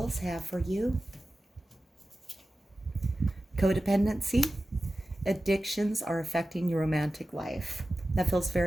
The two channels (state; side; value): normal; both; correlation 0.94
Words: have for you codependency. Addictions are affecting your romantic life. That feels